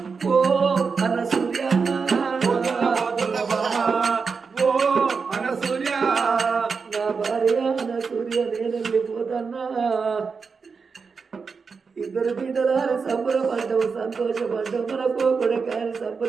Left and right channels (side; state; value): left; quieter; 5.2 dB